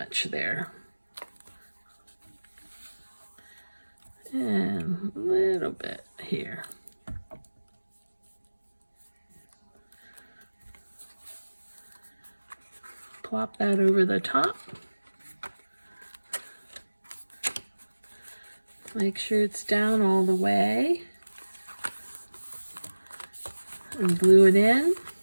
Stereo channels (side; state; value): both; inverted; correlation -1.00